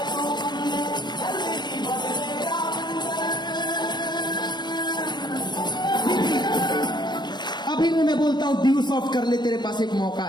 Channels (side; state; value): right; late; 0.21 ms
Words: मैं बोलता हूं ड्यू सॉफ्ट कर ले, तेरे पास एक मौका